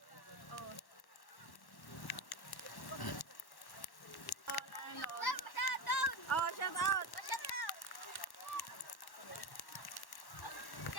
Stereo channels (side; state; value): right; late; 1.1 ms